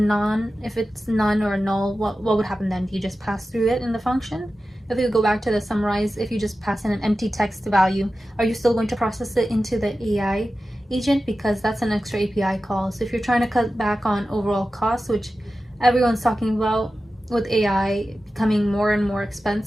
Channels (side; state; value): both; normal; correlation 0.93